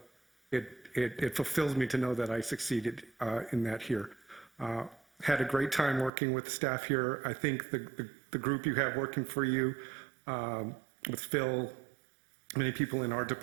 it fulfills me to know that I succeeded in that here. Had a great time working with the staff here. I think the group you have working for you, with Phil, many people in our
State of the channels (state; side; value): drops out; left; at 6.1 s